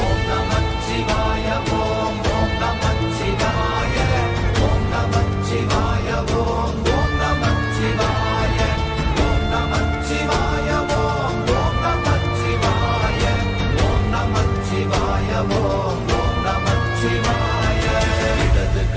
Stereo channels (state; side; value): identical; both; correlation 1.00